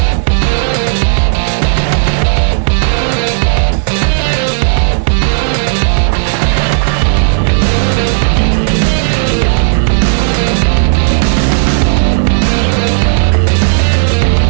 Stop out there.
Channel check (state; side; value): silent; left; digital silence